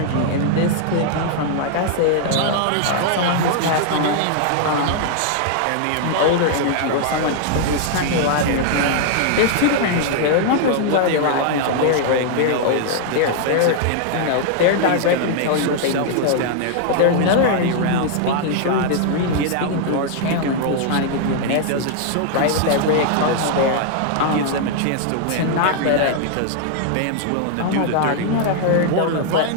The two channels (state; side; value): different; both; correlation -0.01